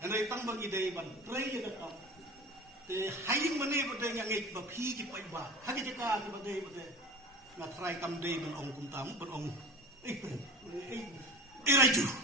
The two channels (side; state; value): both; normal; correlation 0.35